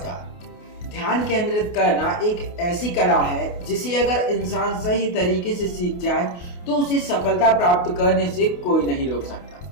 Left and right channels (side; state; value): right; late; 28 ms